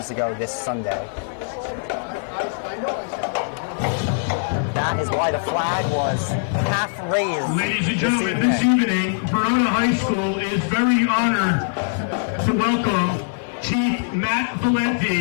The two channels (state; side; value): silent; right; 64 dB below the other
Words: ago this Sunday. That is why the flag was half raised. Ladies and gentlemen, this evening, Verona High School is very honored to welcome Chief Matt